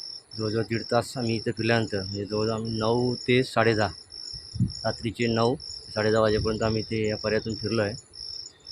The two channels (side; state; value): both; identical; correlation 1.00